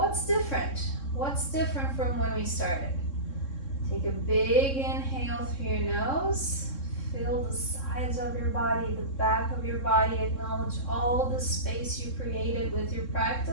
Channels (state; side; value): late; right; 3.7 ms